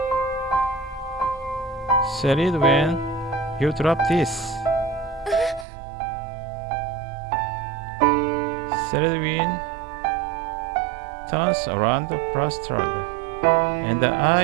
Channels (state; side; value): drops out; left; at 5.7 s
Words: Said it when you drop this. Selwyn turns around flustered, and